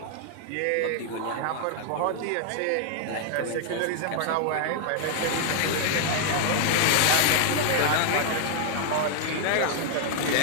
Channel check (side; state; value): both; different; correlation 0.00